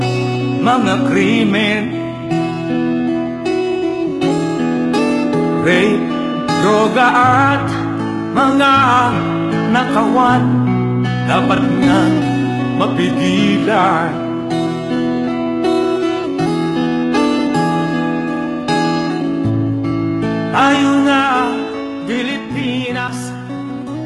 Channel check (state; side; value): identical; both; correlation 1.00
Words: mga krimen, rape, droga at mga nakawan, dapat nga mapigilan. Tayo